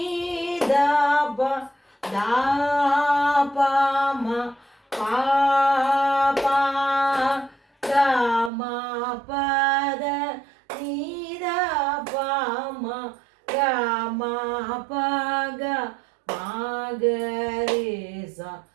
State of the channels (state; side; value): drops out; left; at 8.5 s